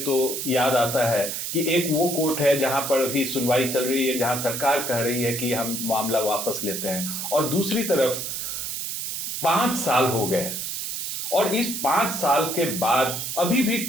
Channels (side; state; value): right; noise; hiss, 4 dB below the sound